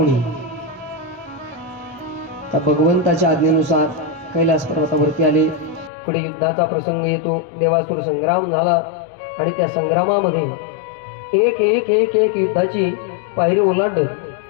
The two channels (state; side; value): drops out; right; at 5.9 s